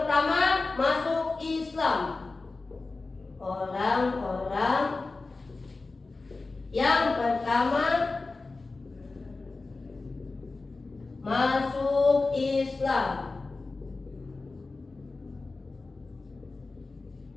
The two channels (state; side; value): quieter; right; 3.6 dB